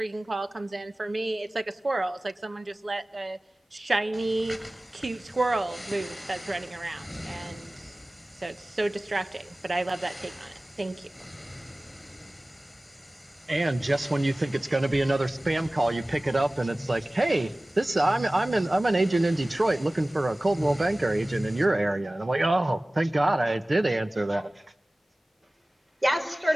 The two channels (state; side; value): normal; both; correlation 0.98